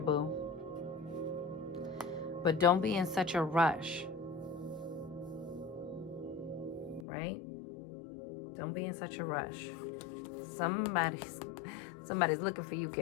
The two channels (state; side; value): drops out; right; at 7.1 s